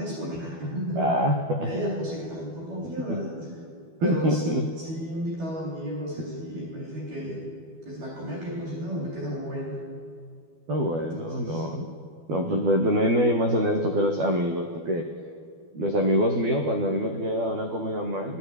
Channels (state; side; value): late; left; 12 ms